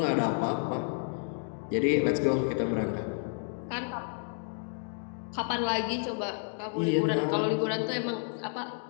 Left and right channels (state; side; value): silent; right; 57 dB below the other